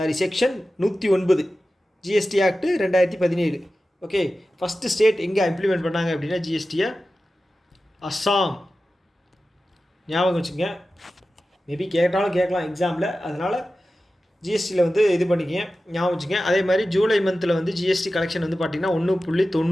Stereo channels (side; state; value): both; normal; correlation 0.94